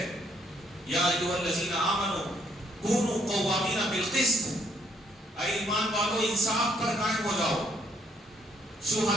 یا ایھا الذین آمنوا کونوا قوامین بالقسط، اے ایمان والو انصاف پر قائم ہو جاؤ.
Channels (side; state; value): both; normal; correlation 0.68